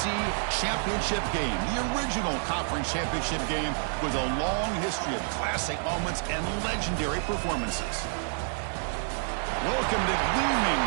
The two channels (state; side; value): silent; left; 59 dB below the other